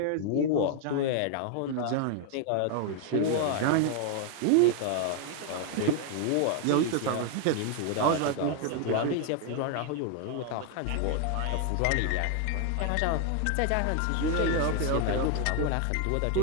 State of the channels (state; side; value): different; both; correlation 0.00